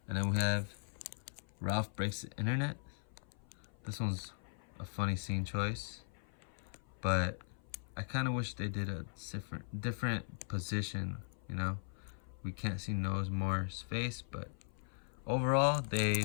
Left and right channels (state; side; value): silent; right; 52 dB below the other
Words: And then we have Ralph Breaks the Internet. This one's a funny scene choice, but I kind of wish they did a different position, you know. We can't see Noah's Moore's face, but overall they